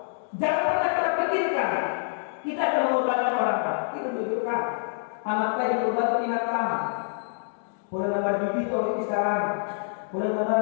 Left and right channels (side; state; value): right; silent; digital silence